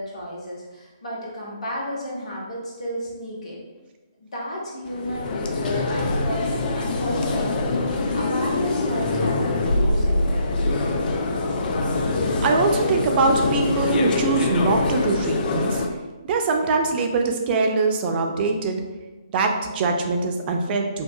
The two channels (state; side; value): inverted; both; correlation -0.63